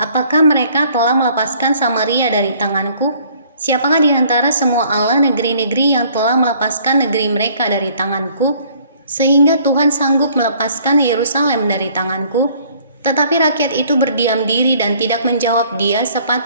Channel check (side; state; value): both; inverted; correlation -0.59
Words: Apakah mereka telah melepaskan Samaria dari tanganku? Siapakah di antara semua Allah negeri-negeri yang telah melepaskan negeri mereka dari tanganku, sehingga Tuhan sanggup melepaskan Yerusalem dari tanganku? Tetapi rakyat itu berdiam diri dan tidak menjawab dia